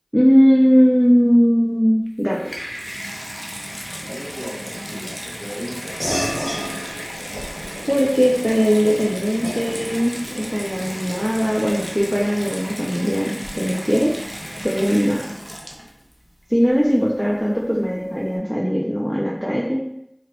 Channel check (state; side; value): identical; both; correlation 1.00